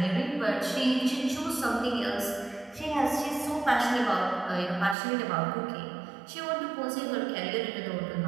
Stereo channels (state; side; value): drops out; left; at 5.0 s